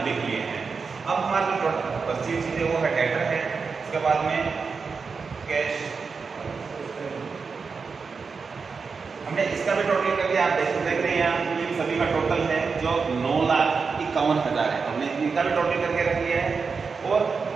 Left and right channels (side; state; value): left; quieter; 5.1 dB